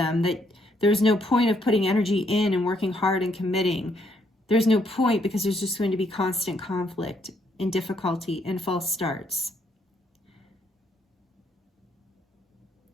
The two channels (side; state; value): both; normal; correlation 0.72